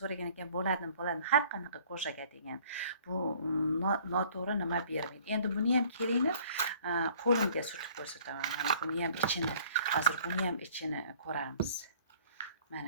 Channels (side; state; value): both; inverted; correlation -0.55